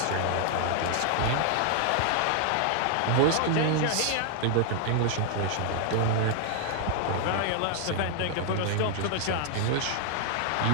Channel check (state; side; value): different; both; correlation 0.00